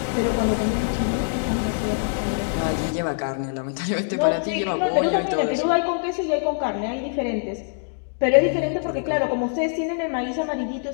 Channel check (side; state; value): right; silent; digital silence